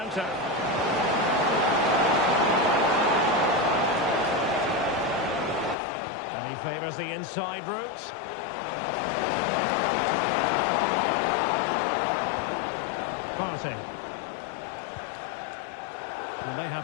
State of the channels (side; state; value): right; drops out; at 5.8 s